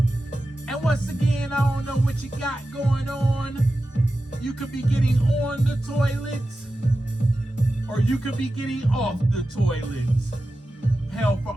And once again, I don't know what you got going on. You could be getting on the toilet, or you could be getting off the toilet. Hell, for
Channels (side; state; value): both; normal; correlation 0.93